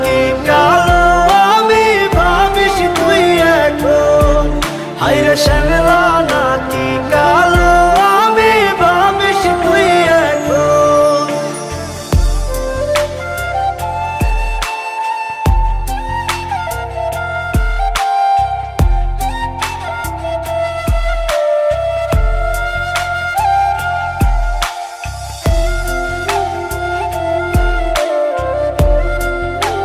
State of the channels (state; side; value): identical; both; correlation 1.00